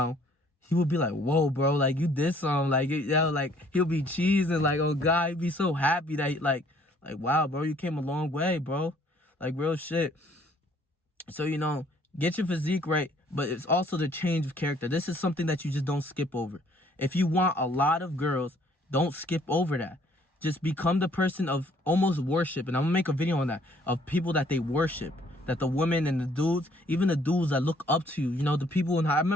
he would be like, whoa, bro, like, you did something. Like, you know, like, he'll be cheesing, like, oh, God, he'd be so happy that, like, wow, bro, you came a long way, bro. Like, real shit. So, you know, get your physique right, but it's also the change of character. This is something that you just don't skip over. If you want a lot of girls, don't skip over that. Just become the person of almost worship. And I'm going to make a video on that, of people that they worship. That the women and the dudes, even the dudes that look up to you, you know, the people I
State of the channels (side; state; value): both; normal; correlation 0.61